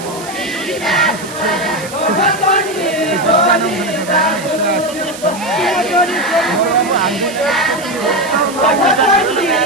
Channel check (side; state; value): right; noise; hiss, 14 dB below the sound